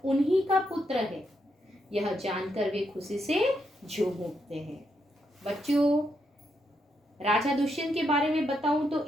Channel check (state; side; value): normal; both; correlation 0.80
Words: उन्हीं का पुत्र है। यह जानकर वे खुशी से झूम उठते हैं। बच्चों, राजा दुष्यंत के बारे में बताऊं तो